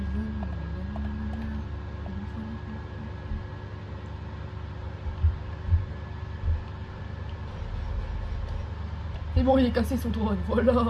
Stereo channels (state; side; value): identical; both; correlation 1.00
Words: Et bon, il est cassé son drone, voilà.